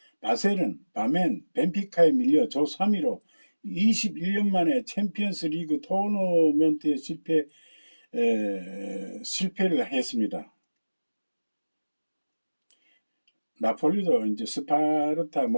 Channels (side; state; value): both; inverted; correlation -1.00